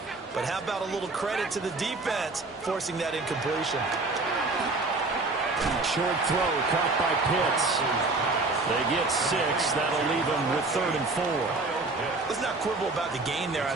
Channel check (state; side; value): quieter; left; 3.4 dB